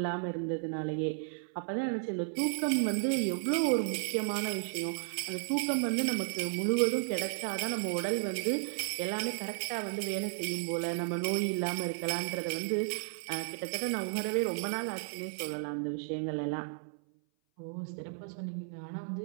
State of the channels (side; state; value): left; silent; 55 dB below the other